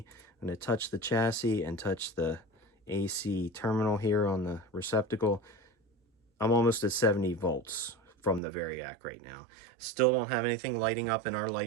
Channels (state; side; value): drops out; left; at 8.4 s